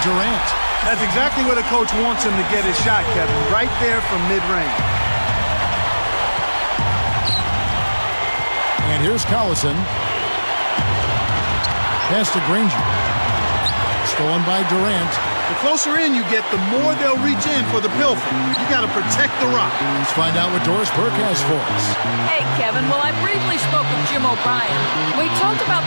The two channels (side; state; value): both; inverted; correlation -1.00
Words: Durant. That's exactly where the coach wants him to get his shot, Kevin. Right there from mid-range. And here's Collison. Pass to Granger. Stolen by Durant. The closer in you get, the more they'll reach in for the pilfer. You got to protect the rock. Let's find out what Doris Burke has for us. Hey, Kevin. Well, I briefly spoke with Jim O'Brien. We talked about